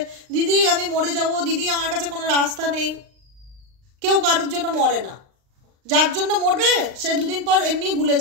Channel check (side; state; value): left; late; 39 ms